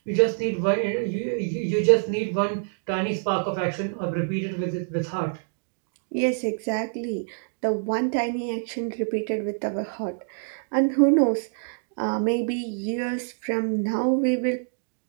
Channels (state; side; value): silent; left; digital silence